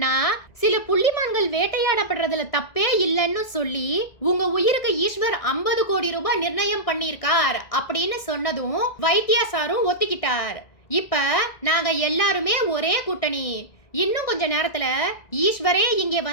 சில புள்ளிமான்கள் வேட்டையாடப்படுறதுல தப்பே இல்லைன்னு சொல்லி உங்க உயிருக்கு ஈஸ்வர் 50 கோடி ரூபாய் நிர்ணயம் பண்ணியிருக்கார் அப்படின்னு சொன்னதும் வைத்தியா சாரும் ஒத்துக்கிட்டார். இப்ப நாங்க எல்லாருமே ஒரே கூட்டணி. இன்னும் கொஞ்ச நேரத்துல ஈஸ்வரே இங்கே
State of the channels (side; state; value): right; late; 1.9 ms